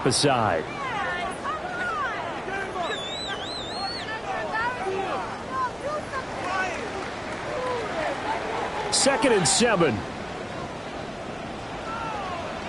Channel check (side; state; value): both; identical; correlation 1.00